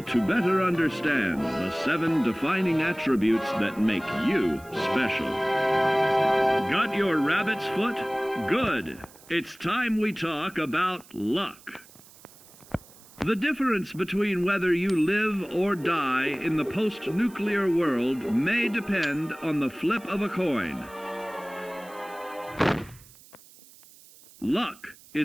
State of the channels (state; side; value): noise; right; hiss, 23 dB below the sound